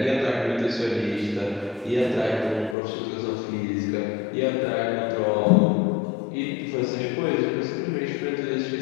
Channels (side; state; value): right; drops out; at 2.8 s